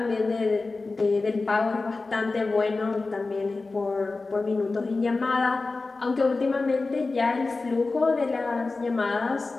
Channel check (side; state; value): right; quieter; 3.6 dB